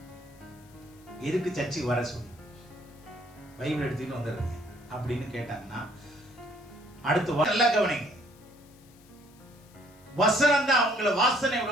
எதுக்கு சர்ச்சுக்கு வர சொல்லி பைபிள் எடுத்துட்டு வந்துடுறீங்க அப்படின்னு கேட்டாங்கன்னா அடுத்து நல்லா கவனிங்க. வசனம் தான் அவங்கள வாசனை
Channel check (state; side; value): noise; left; hiss, 28 dB below the sound